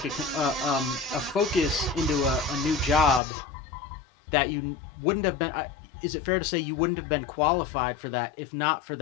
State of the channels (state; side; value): drops out; right; at 3.2 s